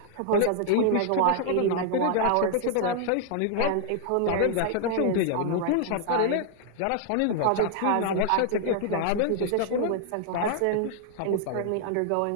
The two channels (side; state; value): both; different; correlation 0.00